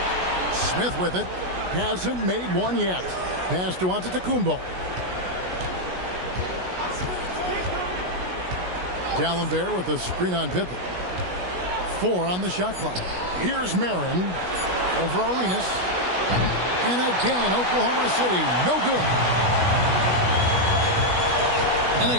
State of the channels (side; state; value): left; late; 16 ms